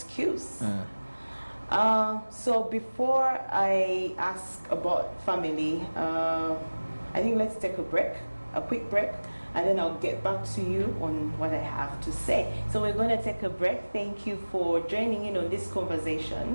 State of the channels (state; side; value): inverted; both; correlation -1.00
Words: So before I ask about family, I think let's take a quick break, and then I'll get back to you on what I have to say. So we're going to take a break. Thank you for joining in on this